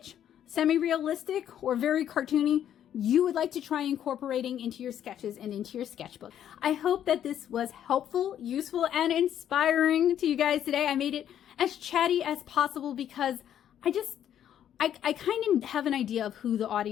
semi-realistic or very cartoony you would like to try incorporating into your sketches and into your sketchbook. I hope that this was helpful, useful, and inspiring to you guys today. I made it as chatty as possible because I kind of have an idea of who the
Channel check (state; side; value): quieter; right; 10.2 dB